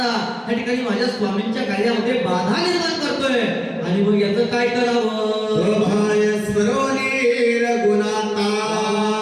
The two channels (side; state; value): both; identical; correlation 1.00